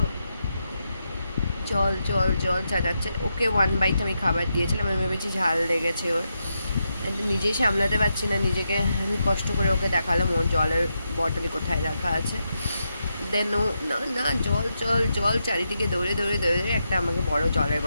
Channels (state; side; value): inverted; both; correlation -0.85